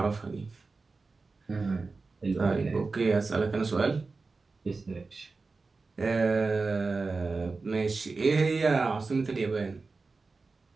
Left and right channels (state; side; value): quieter; left; 4.0 dB